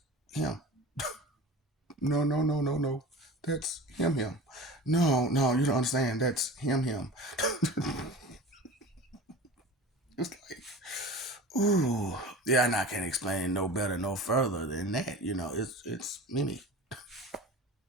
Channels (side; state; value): both; normal; correlation 0.36